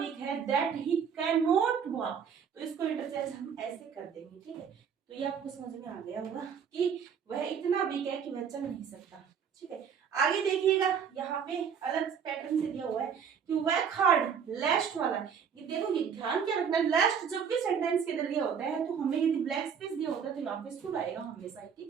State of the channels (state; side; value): quieter; left; 7.2 dB